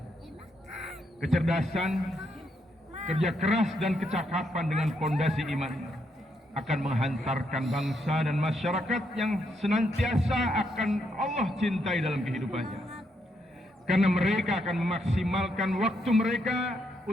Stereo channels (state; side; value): normal; both; correlation 0.77